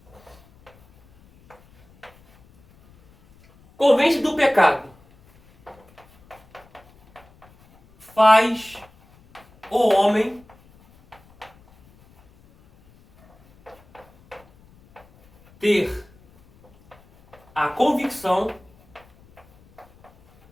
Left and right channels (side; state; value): left; noise; rumble, 29 dB below the sound